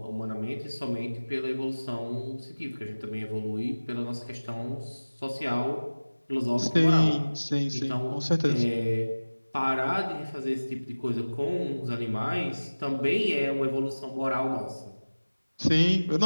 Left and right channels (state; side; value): inverted; both; correlation -1.00